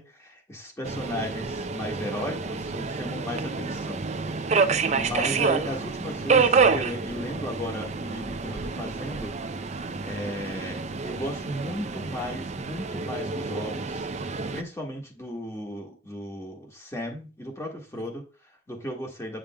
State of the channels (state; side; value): quieter; left; 3.4 dB